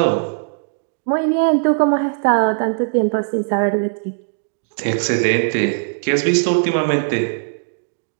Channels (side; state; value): left; silent; digital silence